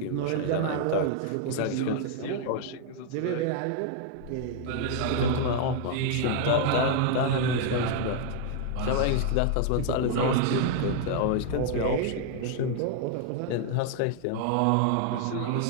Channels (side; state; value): both; different; correlation 0.00